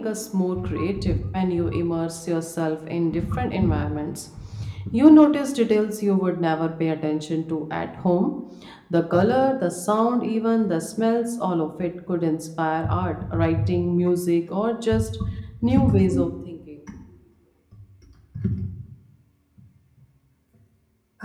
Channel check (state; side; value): identical; both; correlation 1.00